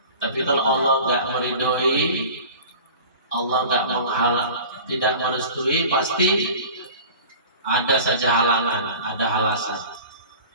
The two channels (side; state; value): both; inverted; correlation -0.40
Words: Tapi kalau Allah nggak meridhoi, Allah nggak tidak merestui, pasti ada saja halangan, ada alasan.